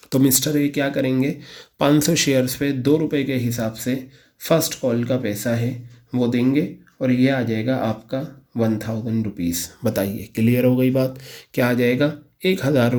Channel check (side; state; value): both; identical; correlation 1.00